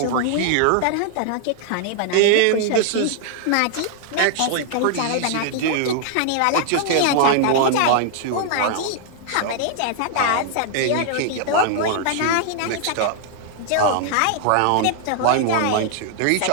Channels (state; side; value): different; both; correlation 0.00